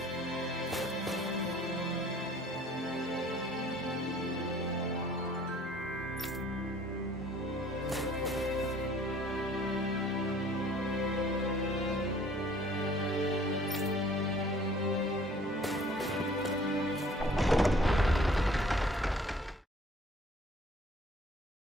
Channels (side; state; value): both; normal; correlation 0.54